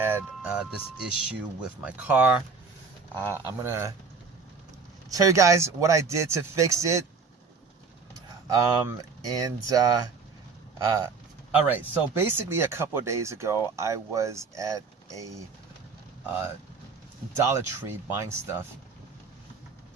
this issue with my car. I'm gonna tell you guys what I did to fix it. All right, so basically a couple of days ago, I was at a Dollar Tree buying stuff.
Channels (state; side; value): quieter; left; 4.9 dB